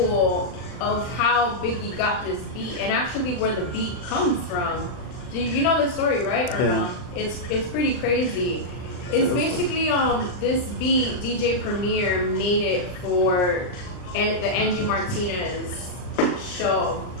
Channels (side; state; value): right; late; 39 ms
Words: of how Biggie got this beat and actually where the beat comes from. Do you know the story, right? Or Yeah. no? It's pretty crazy. It's basically this beat DJ Premier made it for the Angie Martinez show,